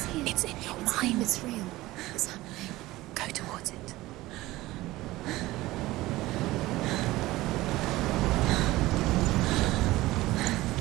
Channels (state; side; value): quieter; left; 18.1 dB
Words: here. It's in your mind. It's real. It's happening. Go towards it.